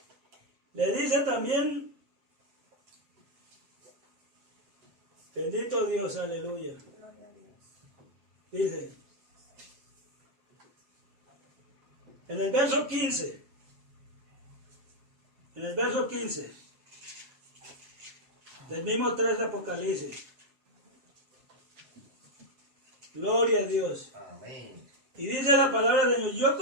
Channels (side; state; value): left; late; 7.4 ms